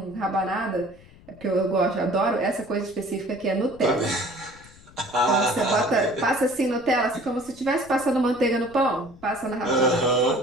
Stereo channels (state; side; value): noise; left; rumble, 23 dB below the sound